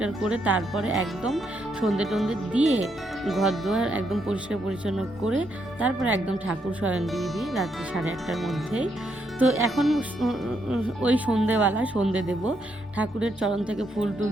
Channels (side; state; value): both; normal; correlation 0.77